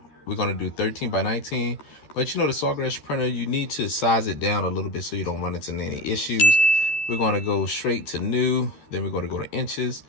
we're gonna do 13 by 19. But the Sawgrass printer, you need to size it down a little bit so you don't run into any issues. We're gonna go straight to new, then we're gonna go to inches.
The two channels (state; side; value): late; right; 13 ms